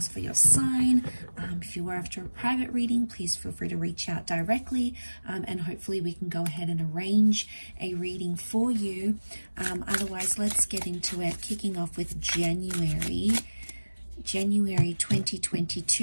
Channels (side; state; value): both; inverted; correlation -1.00